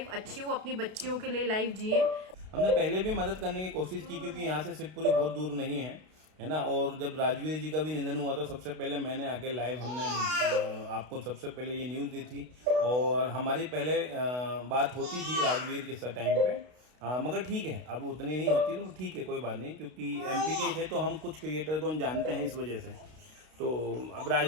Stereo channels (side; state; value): left; late; 32 ms